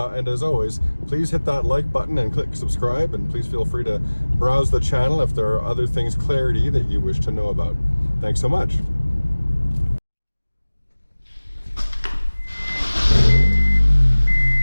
as always, please hit that like button and click subscribe, and please feel free to browse the channel if there are other things clarity that you wish to know about. Thanks so much.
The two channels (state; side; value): inverted; both; correlation -1.00